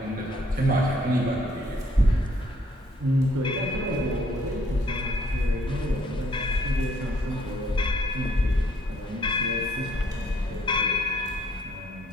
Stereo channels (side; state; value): both; normal; correlation 0.65